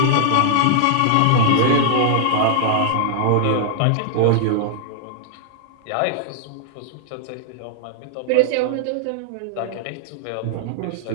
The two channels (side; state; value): both; different; correlation -0.01